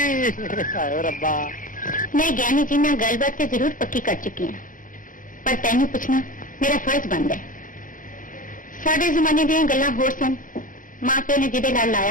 ਹਾਏ ਰੱਬਾ। ਮੈਂ ਗਿਆਨੀ ਜੀ ਨਾਲ ਗੱਲਬਾਤ ਤੇ ਜ਼ਰੂਰ ਪੱਕੀ ਕਰ ਚੁੱਕੀ ਹਾਂ, ਪਰ ਤੈਨੂੰ ਪੁੱਛਣਾ ਮੇਰਾ ਫਰਜ਼ ਬਣਦਾ ਹੈ। ਸਾਡੇ ਜ਼ਮਾਨੇ ਦੀਆਂ ਗੱਲਾਂ ਹੋਰ ਸਨ। ਮਾਂ ਪਿਓ ਨੇ ਜਿਹਦੇ ਨਾਲ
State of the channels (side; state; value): right; late; 0.39 ms